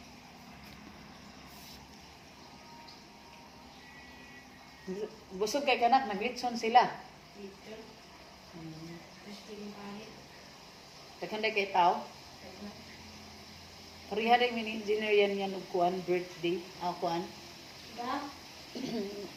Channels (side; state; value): both; identical; correlation 1.00